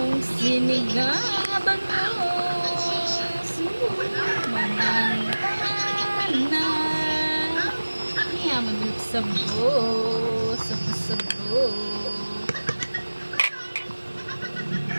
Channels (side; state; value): both; inverted; correlation -1.00